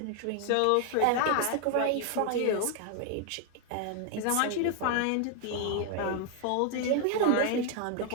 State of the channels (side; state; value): both; different; correlation 0.00